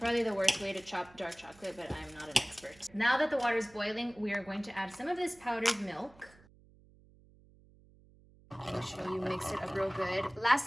the worst way to chop dark chocolate, but I'm not an expert. Now that the water is boiling, we are going to add some of this powdered milk. Make sure you mix it up real good.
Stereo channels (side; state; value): right; noise; hum, 26 dB below the sound